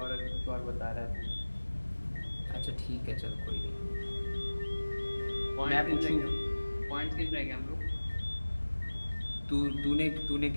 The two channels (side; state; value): both; inverted; correlation -1.00